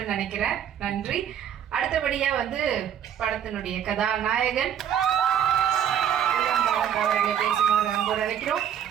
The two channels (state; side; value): quieter; left; 9.3 dB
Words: நினைக்கிறேன். நன்றி. அடுத்தபடியா வந்து படத்தினுடைய கதாநாயகன் அவர்களை பேசுமாறு அன்போடு அழைக்கிறோம்.